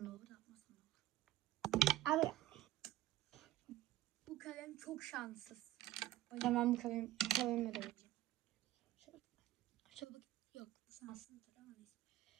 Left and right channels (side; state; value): left; quieter; 14.6 dB